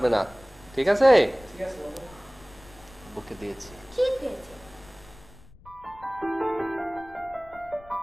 না, ঠিক আছে? ঠিক আছে বাবা। বুকে দিয়েছি। ঠিক হয়েছে।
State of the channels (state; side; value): noise; left; rumble, 22 dB below the sound